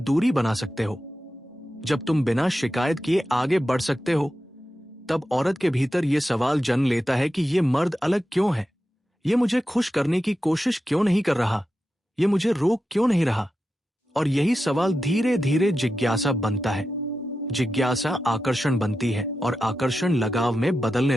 बना सकते हो, जब तुम बिना शिकायत किए आगे बढ़ सकते हो, तब औरत के भीतर यह सवाल जन्म लेता है कि ये मर्द अलग क्यों है, ये मुझे खुश करने की कोशिश क्यों नहीं कर रहा, ये मुझे रोक क्यों नहीं रहा। और यही सवाल धीरे धीरे जिज्ञासा बनता है। जिज्ञासा आकर्षण बनती है और आकर्षण लगाव में बदलने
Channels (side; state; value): both; normal; correlation 0.91